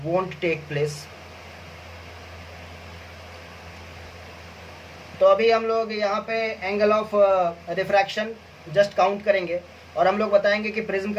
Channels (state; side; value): identical; both; correlation 1.00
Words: won't take place. तो अभी हम लोग यहाँ पे angle of refraction just count करेंगे, और हम लोग बताएंगे कि प्रिज्म